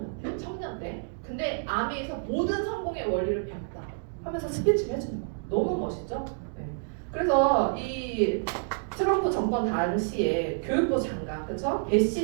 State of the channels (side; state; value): left; silent; digital silence